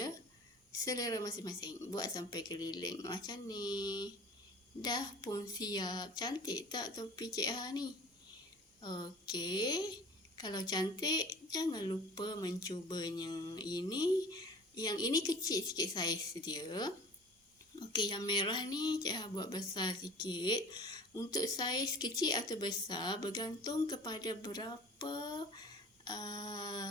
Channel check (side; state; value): both; normal; correlation 0.43